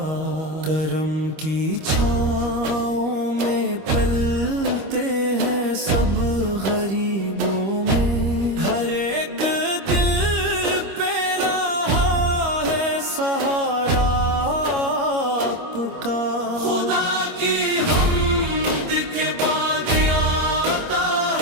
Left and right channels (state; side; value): late; left; 25 ms